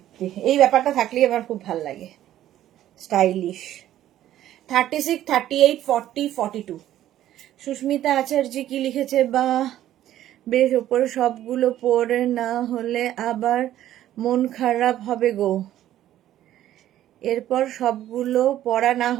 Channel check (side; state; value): left; quieter; 12.7 dB